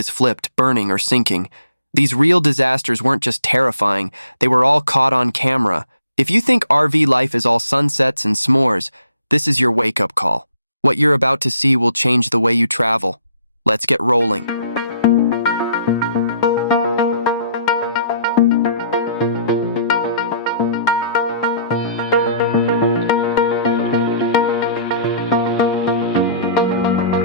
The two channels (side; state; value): both; inverted; correlation -0.62